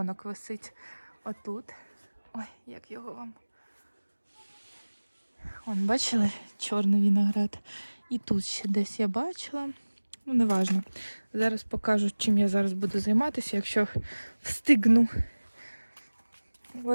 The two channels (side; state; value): both; inverted; correlation -1.00